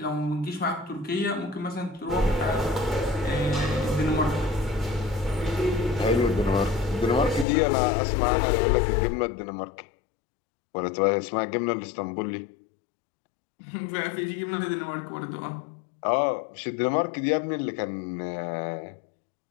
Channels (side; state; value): right; drops out; at 7.5 s